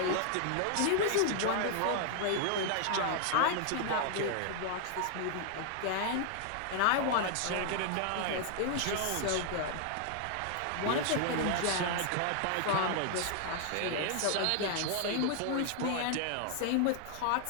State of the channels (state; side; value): different; both; correlation 0.00